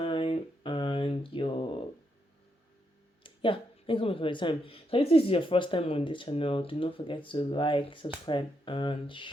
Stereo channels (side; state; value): both; normal; correlation 0.80